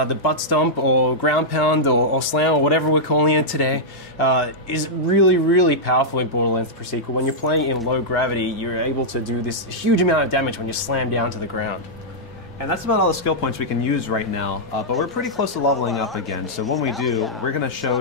butt stomp or ground pound or slam or whatever we're calling it today is really, really powerful in Borderlands the Pre-Sequel. When you're playing in low gravity, you're able to do this huge amount of damage when you slam down to the ground. And that's about all the skill points we can use right now, but we're pretty close to leveling up again. So when we do, we're going to show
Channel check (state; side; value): normal; both; correlation -0.08